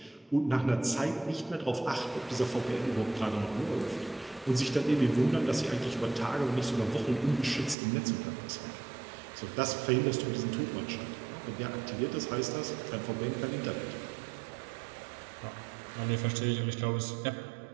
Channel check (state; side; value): drops out; left; at 7.8 s